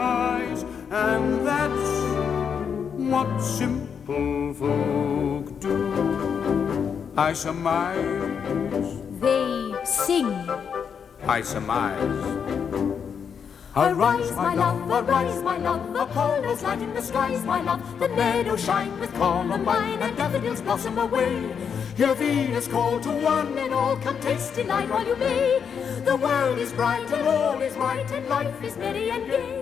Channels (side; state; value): right; quieter; 7.0 dB